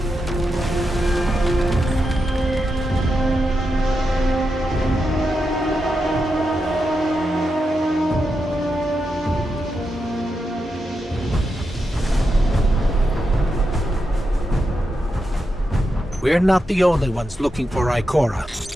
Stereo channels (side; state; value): both; normal; correlation 0.87